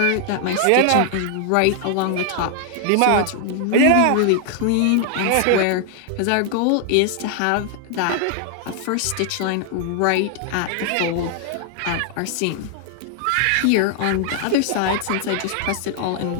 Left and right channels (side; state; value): both; different; correlation 0.00